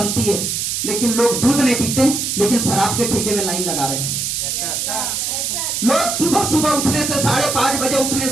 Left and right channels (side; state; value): right; noise; hiss, 1 dB below the sound